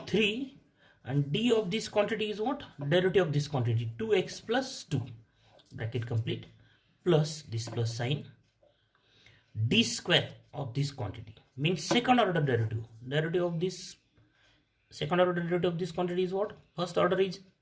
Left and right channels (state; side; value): identical; both; correlation 1.00